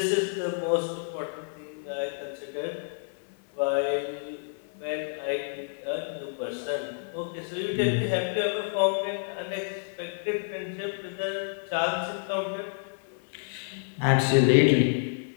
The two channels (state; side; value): silent; right; 59 dB below the other